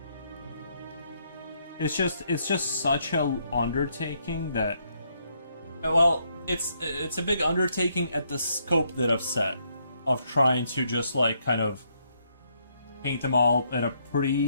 It's just such a undertaking that, well, it's a big undertaking at the scope that I've set of trying to just like kind of paint them all at a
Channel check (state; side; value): inverted; both; correlation -0.74